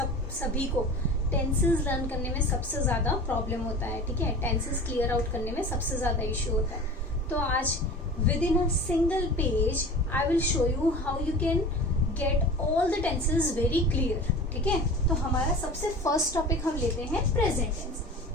सभी को टेंसेस लर्न करने में सबसे ज्यादा प्रॉब्लम होता है. ठीक है, टेंसेस क्लियर आउट करने में सबसे ज्यादा इश्यू होता है. तो आज with in a single page I will show you how you can get all the tenses very clear. ठीक है, तो हमारा सबसे फर्स्ट टॉपिक हम लेते हैं present tense.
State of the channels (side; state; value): both; normal; correlation 0.36